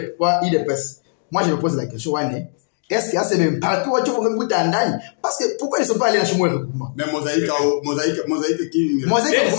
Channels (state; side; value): silent; right; digital silence